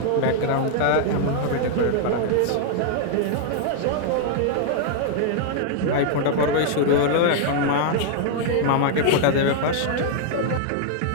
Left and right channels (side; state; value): both; different; correlation -0.01